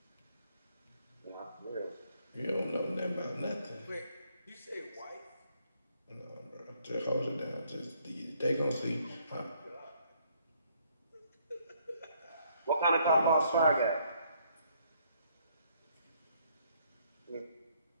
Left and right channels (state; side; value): inverted; both; correlation -0.68